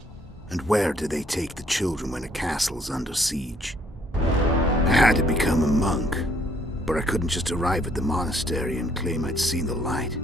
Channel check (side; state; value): both; normal; correlation 0.65